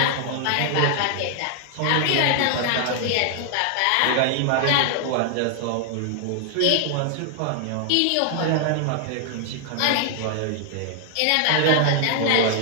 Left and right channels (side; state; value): both; different; correlation 0.00